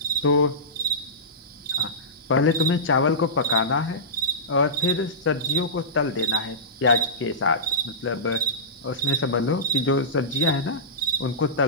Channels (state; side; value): normal; both; correlation -0.18